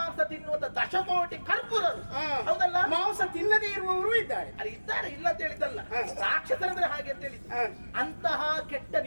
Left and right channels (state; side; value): inverted; both; correlation -1.00